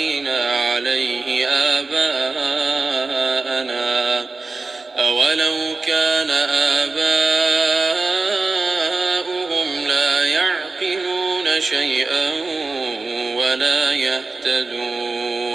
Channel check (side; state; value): left; quieter; 3.7 dB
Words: عليه آباءنا أولو كان آباؤهم لا يعقلون شيئا ولا